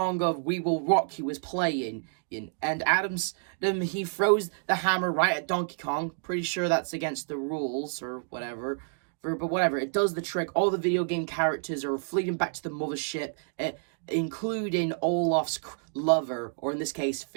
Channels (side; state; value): left; silent; 59 dB below the other